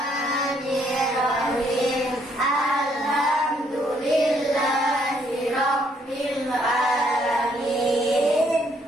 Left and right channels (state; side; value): normal; both; correlation 0.69